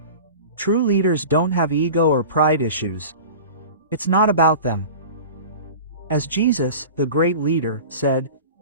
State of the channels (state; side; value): inverted; both; correlation -0.36